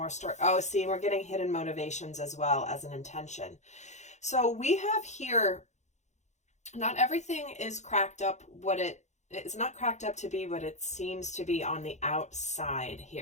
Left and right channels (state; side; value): late; right; 0.34 ms